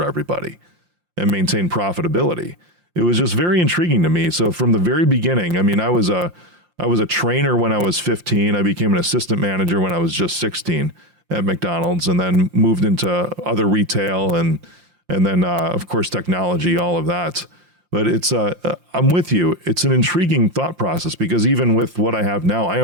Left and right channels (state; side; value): late; left; 5.7 ms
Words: everybody and maintain profitability. It was just very intriguing to me. So from the very beginning, I was a trainer when I was 15. I became an assistant manager when I was just 16 at McDonald's, and then moved into other retail and then of course technology, all of that. But it's I'm with you. It's an intriguing thought process because even with what I have now, I